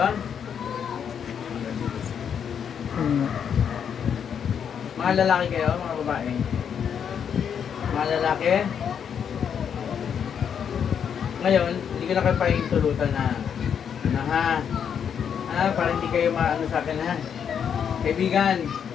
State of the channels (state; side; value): quieter; right; 7.8 dB